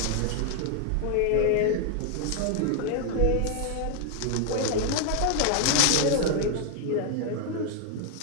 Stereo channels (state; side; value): different; both; correlation 0.00